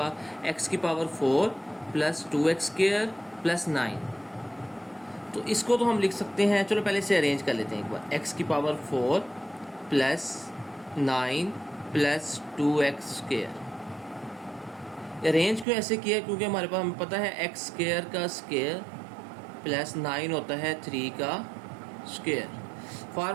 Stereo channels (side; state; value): left; drops out; at 15.7 s